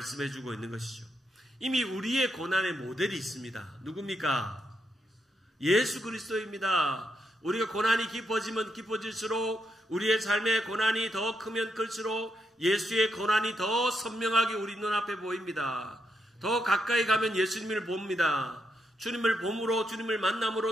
있는 것이죠. 이미 우리의 고난의 모델이 있습니다. 누굽니까? 예수 그리스도입니다. 우리가 고난이 깊어지면 깊어질수록, 우리의 삶의 고난이 더 크면 클수록 예수의 고난이 더 선명하게 우리 눈앞에 보입니다. 더 가까이 가면 예수님을 봅니다. 주님을 봄으로, 주님을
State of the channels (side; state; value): both; normal; correlation 0.81